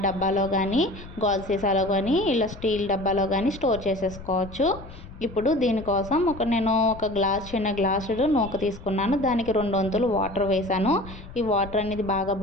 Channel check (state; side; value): noise; left; rumble, 16 dB below the sound